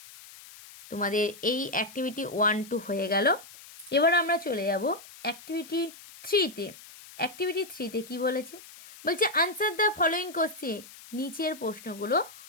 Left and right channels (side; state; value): left; noise; hiss, 18 dB below the sound